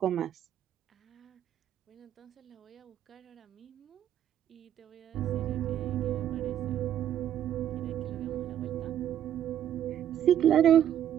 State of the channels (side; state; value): left; quieter; 10.7 dB